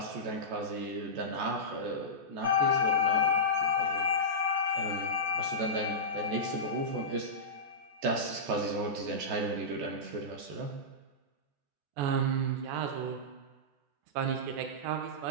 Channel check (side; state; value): left; late; 14 ms